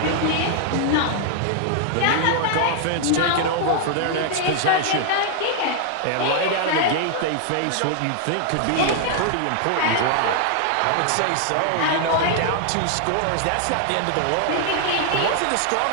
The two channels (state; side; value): different; both; correlation 0.00